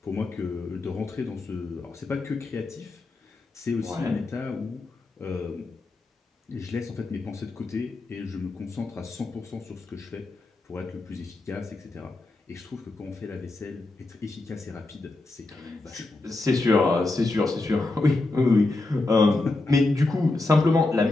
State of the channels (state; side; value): quieter; right; 3.1 dB